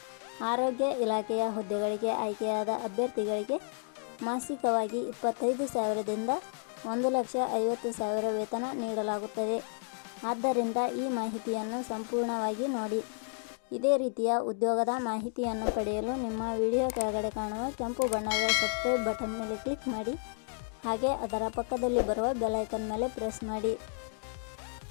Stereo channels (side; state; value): right; silent; 57 dB below the other